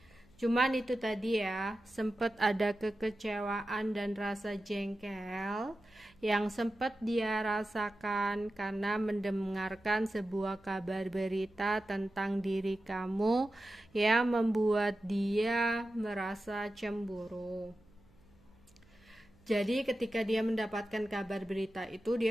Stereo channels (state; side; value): noise; right; hum, 30 dB below the sound